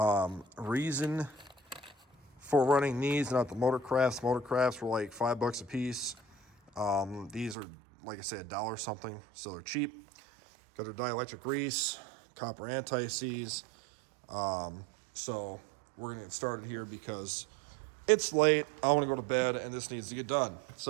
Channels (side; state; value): left; drops out; at 7.6 s